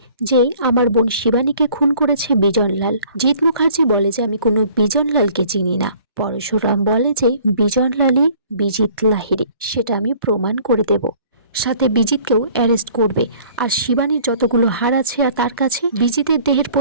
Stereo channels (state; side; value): inverted; both; correlation -0.53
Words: যে আমার বোন শিবানীকে খুন করেছে বিজনলাল। জিৎ মুখার্জি বলে যে আমি কোনো বিজনলালকে চিনি না। পরশুরাম বলে যে বিজনলালই বিজিত লাহিড়ী, সেটা আমি প্রমাণ করে দেব, সাথে বিজিতকেও অ্যারেস্ট করবে। আর শিবানীর যতগুলো হাড় আছে আর তার কাছে বিজিতের দেহের